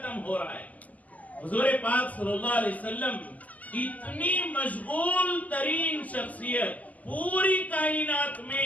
ہو رہا ہے۔ حضور پاک صلی اللہ علیہ وسلم اتنی مشغول ترین شخصیت، پوری کائنات میں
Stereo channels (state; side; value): late; right; 0.076 ms